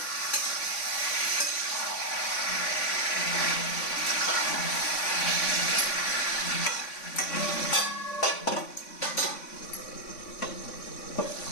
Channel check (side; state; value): right; late; 3.5 ms